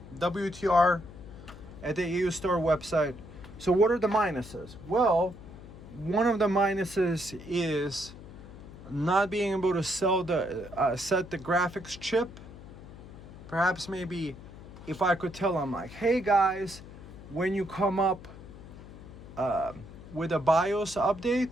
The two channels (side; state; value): left; noise; hum, 16 dB below the sound